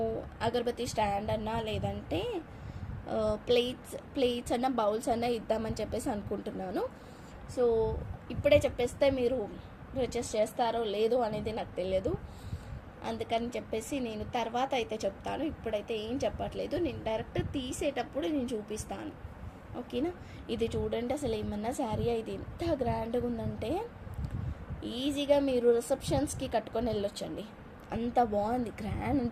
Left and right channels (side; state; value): both; identical; correlation 1.00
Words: అగరబత్తి స్టాండ్ అన్నా లేదంటే ప్లేట్స్ అన్న బౌల్స్ అన్న ఇద్దామని చెప్పేసి అనుకుంటున్నాను. సో ఇప్పుడే చెప్పేస్తే మీరు పర్చేస్ చేస్తారో లేదో అనేది నాకు తెలియదు. అందుకని చెప్పేసి నేను తర్వాత అయితే చెప్తాను. ఇప్పుడైతే ఏం చెప్పట్లేదు. నేను డైరెక్ట్ తీసేటప్పుడు నేను చూపిస్తాను. ఓకేనా. ఇది చూడండి అసలు ఏమన్నా శారీ ఇది ఎంత గ్రాండ్గా ఉందంటే ఈజీగా మీరు రిసెప్షన్స్కి కట్టుకొని వెళ్ళొచ్చండి. అంత బాగుంది, గ్రాండ్